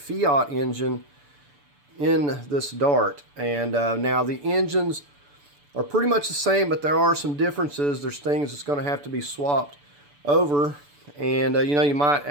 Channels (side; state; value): left; late; 6.9 ms